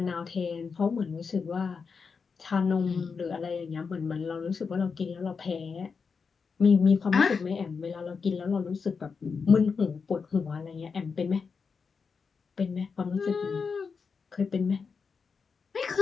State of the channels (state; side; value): quieter; right; 5.4 dB